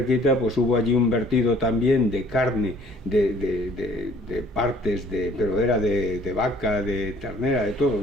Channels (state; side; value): normal; both; correlation 0.56